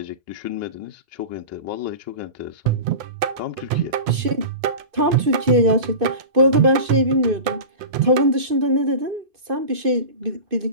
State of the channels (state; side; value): late; left; 2.5 ms